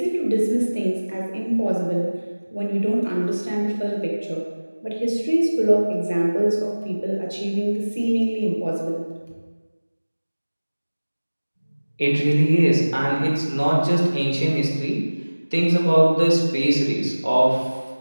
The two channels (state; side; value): inverted; both; correlation -1.00